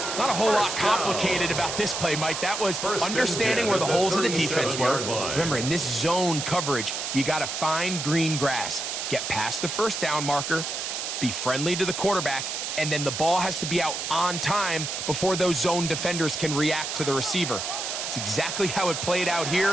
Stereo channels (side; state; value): right; noise; hiss, 4 dB below the sound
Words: Not a whole lot complicated about this play, Mike. That was understanding where the holes of the defense were. Remember, in this zone coverage, you got to find green grass. Get past the 1st down marker, be friendly to the quarterback, and then the ball has to be out on time before those zone defenders can react to the receiver. It's exactly how it played out